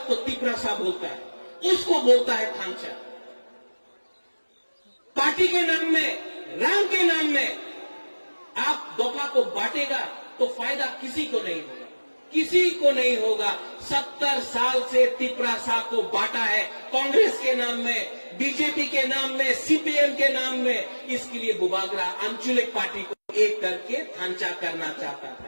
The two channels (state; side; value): inverted; both; correlation -1.00